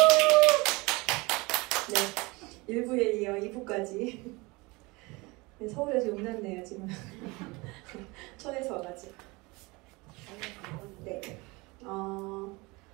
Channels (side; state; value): left; quieter; 24.7 dB